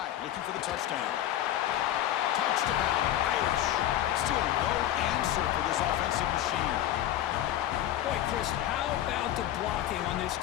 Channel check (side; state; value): right; quieter; 12.5 dB